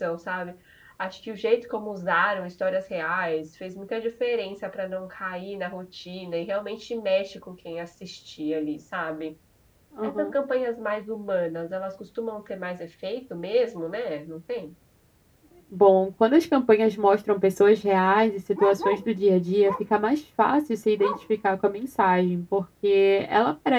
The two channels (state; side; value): identical; both; correlation 1.00